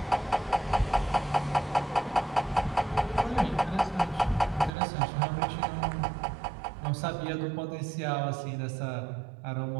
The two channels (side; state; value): left; drops out; at 4.7 s